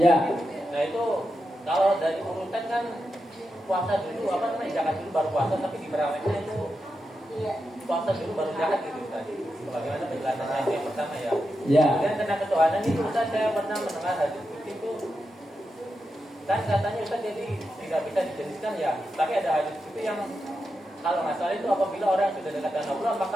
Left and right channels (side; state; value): both; normal; correlation 0.88